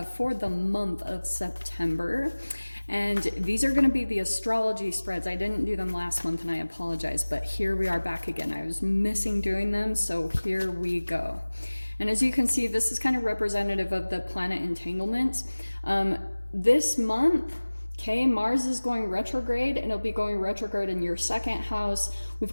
for the month of September. And these are going to be the astrology spreads. I didn't do them last month and I apologize, but here we are back again. I was missing doing them, so here we go. And as you can see, this is kind of representative of the planet entanglements. This month, okay, Mars is going retrograde and it'll be going retrograde in your second house. We've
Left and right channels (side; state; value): both; inverted; correlation -1.00